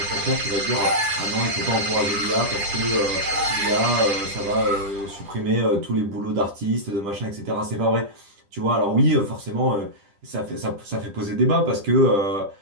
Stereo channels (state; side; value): late; left; 10 ms